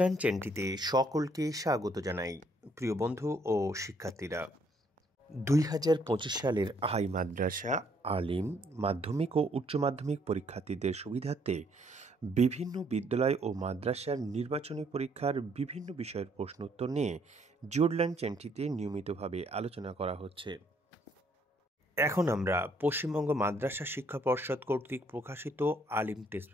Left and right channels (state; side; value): normal; both; correlation 0.67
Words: চ্যানেলটিতে সকলকে স্বাগত জানাই। প্রিয় বন্ধু ও শিক্ষার্থীরা, 2025 সালের হাই মাদ্রাসা, আলিম, মাধ্যমিক ও উচ্চ মাধ্যমিক পরীক্ষার্থীদের সুবিধার্থে বিভিন্ন বিদ্যালয় ও মাদ্রাসার নির্বাচনী পরীক্ষার বিভিন্ন বিষয়ের প্রশ্নোত্তর নিয়ে জিওরল্যান্ড চ্যানেলটিতে নিয়মিতভাবে আলোচনা করা হচ্ছে। এখন আমরা পশ্চিমবঙ্গ মাদ্রাসা শিক্ষা পর্ষদ কর্তৃক প্রকাশিত আলিম টেস্ট